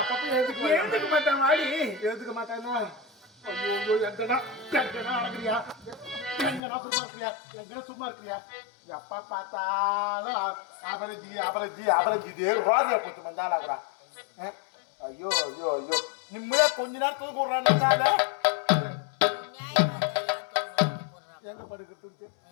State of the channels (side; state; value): right; drops out; at 6.6 s